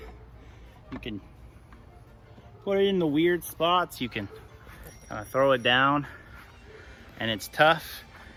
you can put it in the weird spots. You can kind of throw it down and it's tough.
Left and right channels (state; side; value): identical; both; correlation 1.00